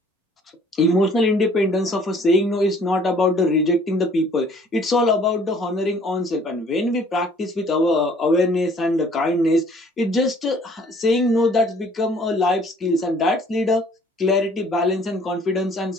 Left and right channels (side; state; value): both; normal; correlation 0.57